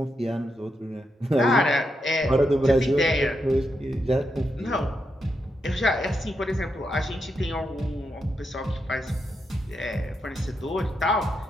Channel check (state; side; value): normal; both; correlation 0.83